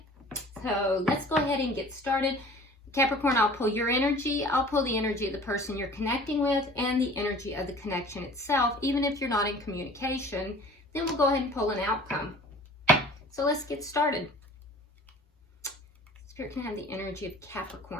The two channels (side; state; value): both; normal; correlation 0.46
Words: So let's go ahead and get started. Capricorn, I'll pull your energy. I'll pull the energy of the person you're connecting with and the energy of the connection itself. Even if you're not in communication, then we'll go ahead and pull an outcome. So let's get started. Spirit, can I have the energy of